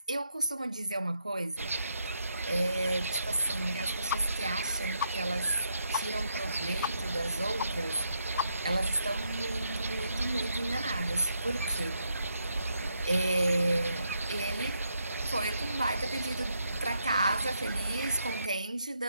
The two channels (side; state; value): both; inverted; correlation -0.78